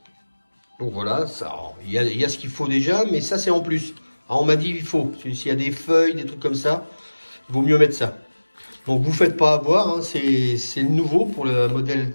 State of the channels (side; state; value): both; inverted; correlation -1.00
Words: Donc voilà, il y a ce qu'il faut déjà, mais ça, c'est en plus. Ah, on m'a dit, il faut. S'il y a des feuilles, des trucs comme ça, il vaut mieux mettre ça. Donc, vous ne faites pas avoir. Hein, c'est le nouveau pour le